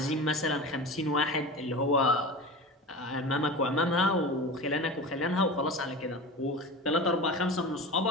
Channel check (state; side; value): normal; both; correlation 0.31